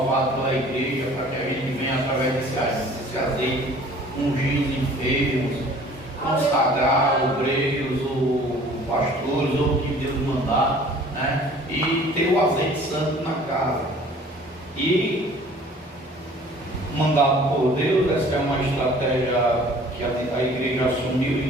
pela igreja, para que a gente venha, através desse azeite, ungir os enfermos, consagrar obreiros, ou pastores, ou o que Deus mandar, né? E ter o azeite santo na casa. E mandado por Deus, essa é uma estratégia que a igreja assumiu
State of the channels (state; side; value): normal; both; correlation 0.51